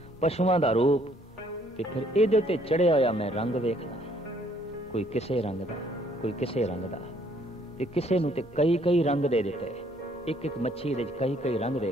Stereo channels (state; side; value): normal; both; correlation 0.64